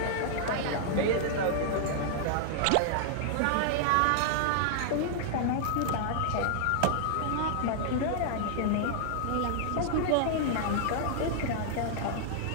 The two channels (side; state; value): both; different; correlation -0.01